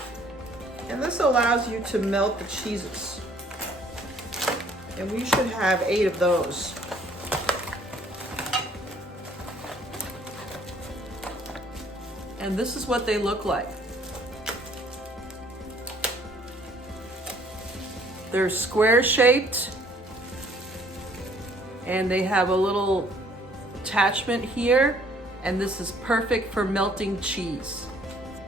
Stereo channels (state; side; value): normal; both; correlation 0.60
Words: And this allows you to melt the cheeses. And we should have 8 of those. And this is what they look like. They're square shaped and they have a little attachment here, and this is perfect for melting cheese.